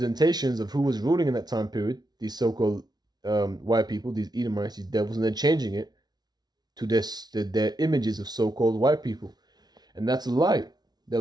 of who was ruling in that time period, these so-called white people, these Edomites, these devils, and they're changing it to their images of so-called white people. And that's a lie. They're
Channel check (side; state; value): left; late; 0.19 ms